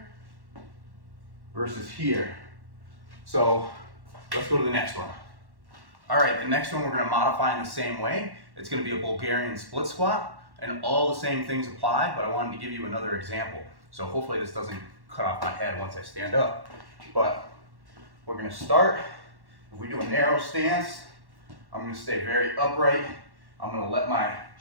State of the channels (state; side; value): late; left; 1.1 ms